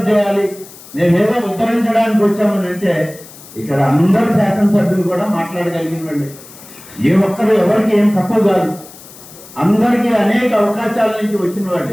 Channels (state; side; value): noise; left; hiss, 19 dB below the sound